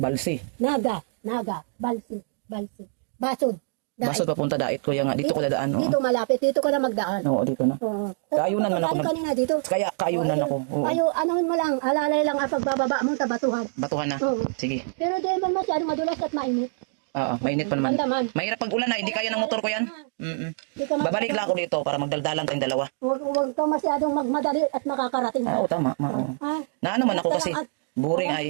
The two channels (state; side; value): silent; left; 62 dB below the other